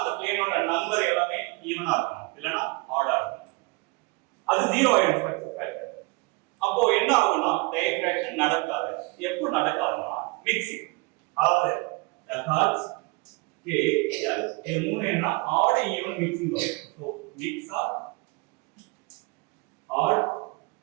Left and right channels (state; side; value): quieter; left; 27.9 dB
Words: அந்த பிளேனோட நம்பர் எல்லாமே ஈவனா இருக்கும் இல்லனா ஆடா இருக்கும் அது 0 ஆயிடும் ஸ்ட்ரக்சர் ஃபேக்டர் அப்போ என்ன ஆகும்னா டைஃப்ராக்ஷன் நடக்காது எப்போ நடக்காதுன்னா மிக்சிங் அதாவது ஹர்ட்ஸ் கே எல் இது மூணு என்ன ஆட் ஈவன் மிக்சிங் வரும் so mix or odd